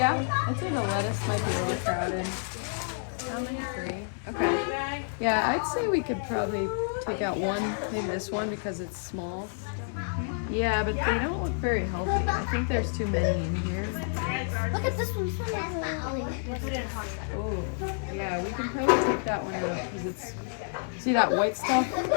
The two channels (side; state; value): right; silent; digital silence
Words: I think the lettuce might be a little crowded. How many? 3. Okay. Yeah, I'd say we could probably take out one, maybe this one because it's small. Yeah, but they don't look very healthy. I think there's too many in here. Look at this one. This one is really put it in hot. Oh, yeah, we can probably take that one out because it's, see that white stuff?